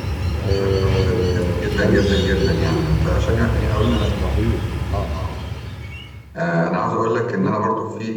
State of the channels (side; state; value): both; identical; correlation 1.00